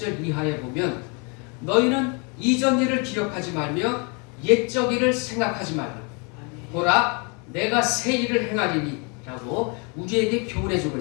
이하에 보면 너희는 이전 일을 기억하지 말며 옛적 일을 생각하지 말라. 보라 내가 새 일을 행하리니 라고 우리에게 교훈해주고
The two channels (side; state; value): right; quieter; 33.6 dB